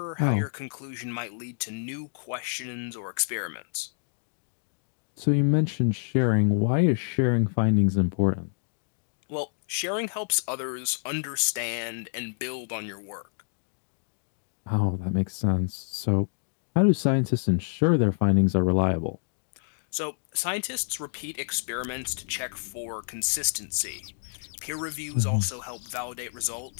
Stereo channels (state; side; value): silent; right; digital silence